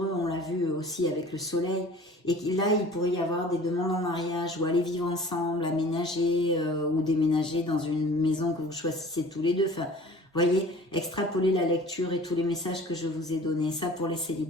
on l'a vu aussi avec le soleil. Et là, il pourrait y avoir des demandes en mariage ou aller vivre ensemble, aménager ou déménager dans une maison que vous choisissez tous les deux. Enfin, vous voyez, extrapoler la lecture et tous les messages que je vous ai donnés, ça pour les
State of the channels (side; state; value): both; normal; correlation 0.46